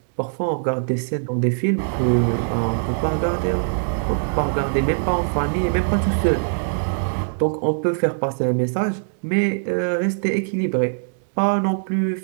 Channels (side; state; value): left; silent; 64 dB below the other